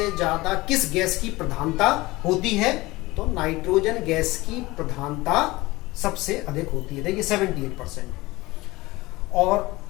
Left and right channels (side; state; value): right; quieter; 20.5 dB